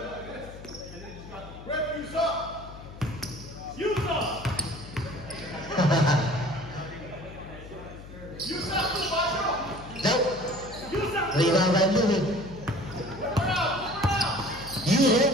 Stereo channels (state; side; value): noise; left; hum, 15 dB below the sound